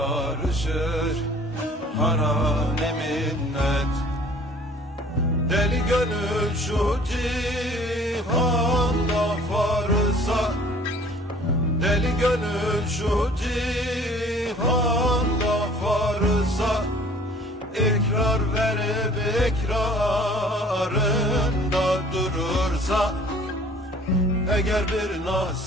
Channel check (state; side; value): normal; both; correlation 0.52